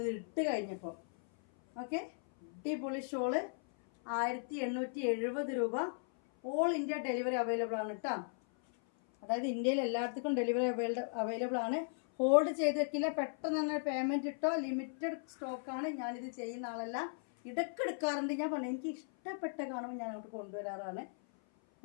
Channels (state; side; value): silent; right; 53 dB below the other